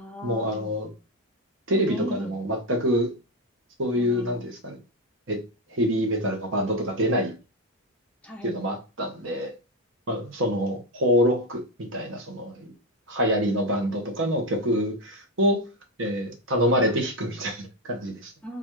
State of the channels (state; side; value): normal; both; correlation 0.10